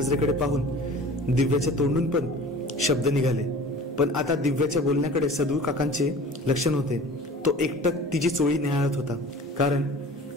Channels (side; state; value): both; normal; correlation 0.42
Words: पाहून दिव्याच्या तोंडून पण शब्द निघाले, पण आता दिव्याच्या बोलण्याकडे सदू काकांचे लक्ष नव्हते. तो एकटक तिची चोळी निहाळत होता, कारण